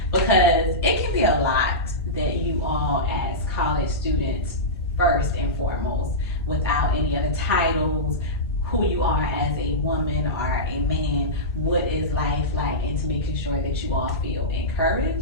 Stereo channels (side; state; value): both; normal; correlation -0.15